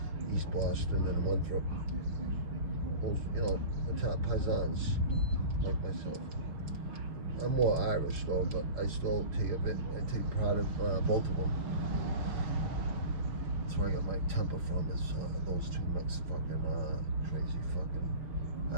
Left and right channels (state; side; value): late; left; 5.8 ms